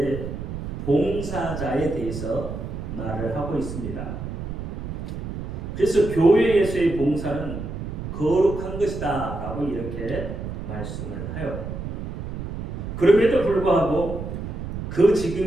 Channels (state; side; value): noise; right; rumble, 7 dB below the sound